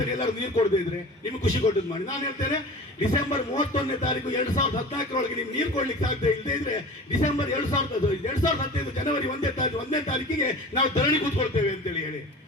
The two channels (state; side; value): normal; both; correlation 0.37